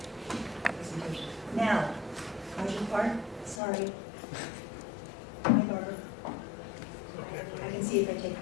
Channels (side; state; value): right; drops out; at 3.6 s